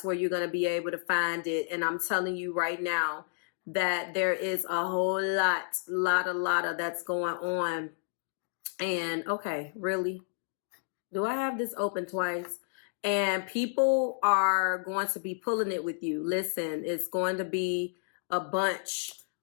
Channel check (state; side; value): silent; right; digital silence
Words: where you're going to be able to find it. And I'm telling you right now that there is a whole lot of that's going on. And okay, really? Do I have this open twice? And people are going to be pulling it with you. Listen, it's going to be a bunch